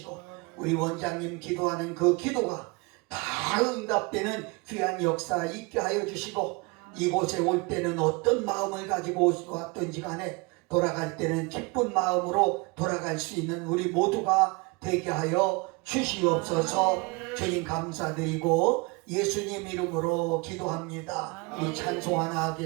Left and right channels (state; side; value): quieter; left; 27.2 dB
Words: 우리 원장님 기도하는 그 기도가 다 응답되는 귀한 역사 있게 하여 주시고 이곳에 올 때는 어떤 마음을 가지고 왔든지 간에 돌아갈 때는 기쁜 마음으로 돌아갈 수 있는 우리 모두가 되게 하여 주시옵소서. 주님 감사드리고 예수님 이름으로 기도합니다. 우리 찬송 하나